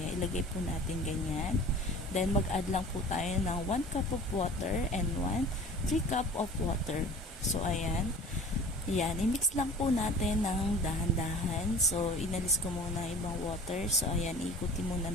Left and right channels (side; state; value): both; normal; correlation 0.43